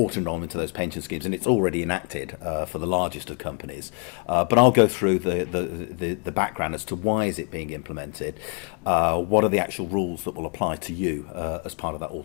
to those pension schemes, and it's already enacted for the largest of companies. But I'll go through the background as to why is it being implemented. What are the actual rules that will apply to you as part of that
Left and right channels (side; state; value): right; quieter; 36.7 dB